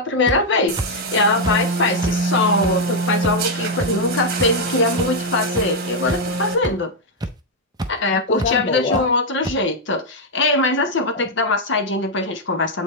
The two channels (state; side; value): normal; both; correlation 0.00